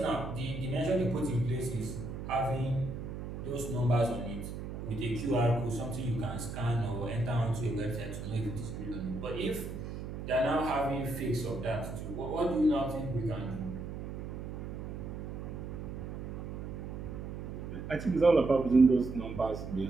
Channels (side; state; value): right; noise; hum, 7 dB below the sound